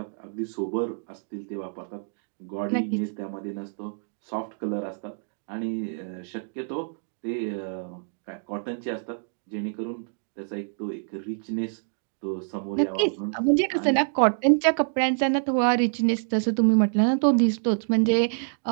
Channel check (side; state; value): left; silent; digital silence